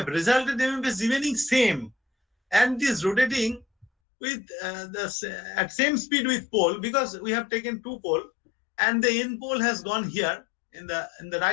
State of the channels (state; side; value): drops out; right; at 3.9 s